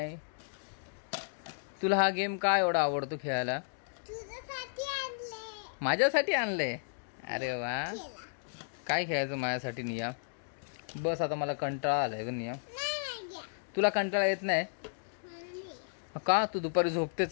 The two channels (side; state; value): right; silent; digital silence